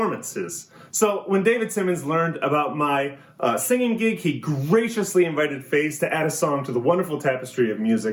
So when David Simmons learned about my singing gig, he graciously invited Face to add a song to the wonderful tapestry of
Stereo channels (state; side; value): identical; both; correlation 1.00